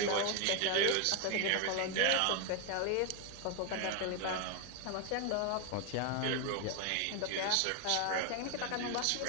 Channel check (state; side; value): different; both; correlation 0.01